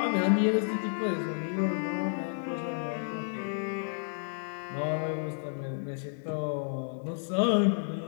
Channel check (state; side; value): silent; right; digital silence